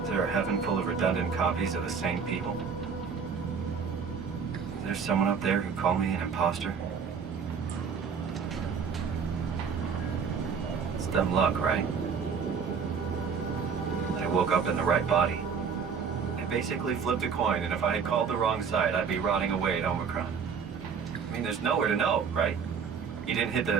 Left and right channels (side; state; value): left; quieter; 6.3 dB